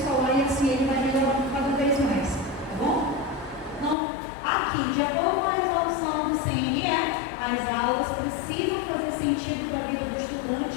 e assim ele vai melhorando cada vez mais, tá bom? Então, aqui, de acordo com a resolução do CNE, as aulas precisam fazer sentido para a vida do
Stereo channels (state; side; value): drops out; right; at 4.0 s